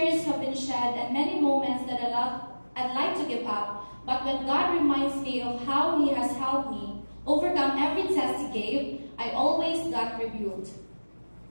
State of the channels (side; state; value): both; inverted; correlation -1.00